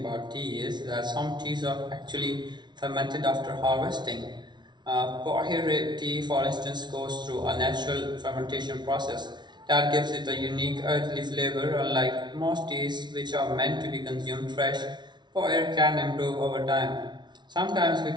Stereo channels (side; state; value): left; late; 0.21 ms